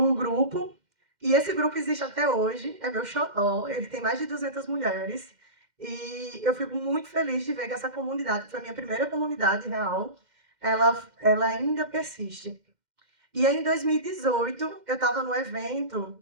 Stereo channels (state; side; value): late; left; 2.1 ms